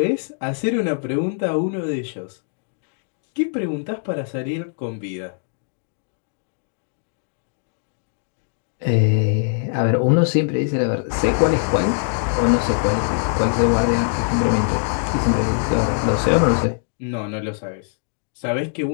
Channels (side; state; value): right; silent; digital silence